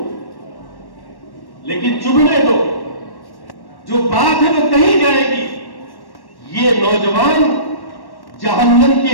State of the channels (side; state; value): right; late; 1.1 ms